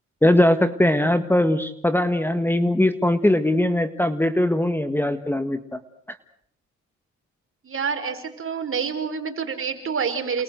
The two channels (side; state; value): both; normal; correlation 0.81